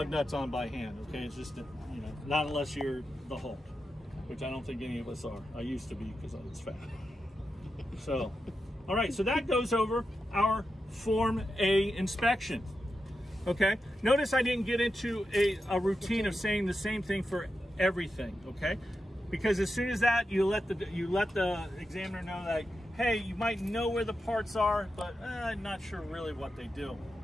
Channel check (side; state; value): both; normal; correlation 0.89